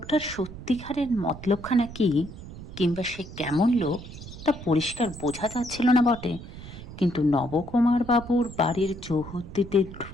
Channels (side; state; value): right; noise; rumble, 13 dB below the sound